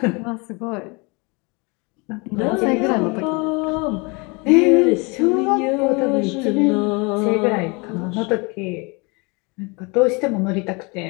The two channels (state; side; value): quieter; right; 29.1 dB